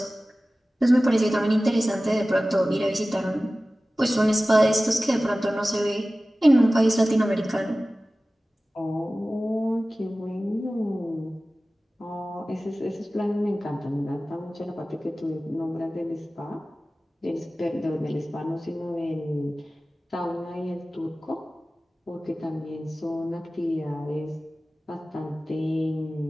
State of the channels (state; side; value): normal; both; correlation 0.96